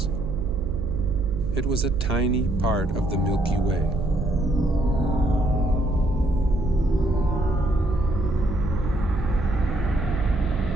It was a tiny part of the Milky Way.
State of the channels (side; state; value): right; noise; hum, 9 dB below the sound